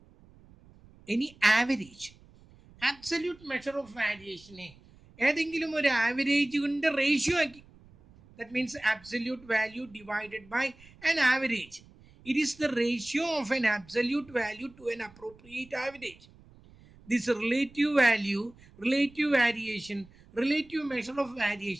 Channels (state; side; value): noise; right; rumble, 25 dB below the sound